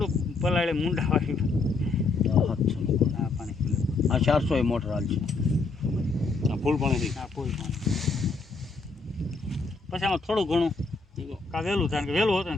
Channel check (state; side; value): quieter; right; 3.9 dB